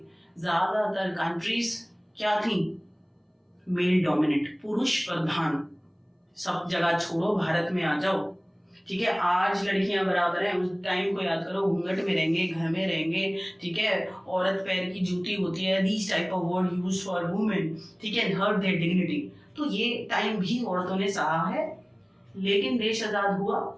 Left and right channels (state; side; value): identical; both; correlation 1.00